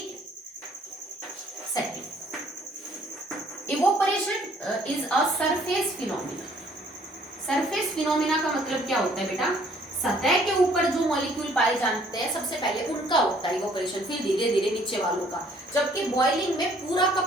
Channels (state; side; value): normal; both; correlation 0.61